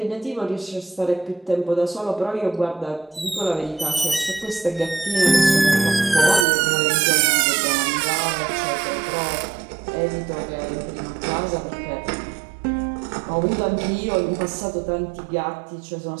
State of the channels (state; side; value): drops out; left; at 6.5 s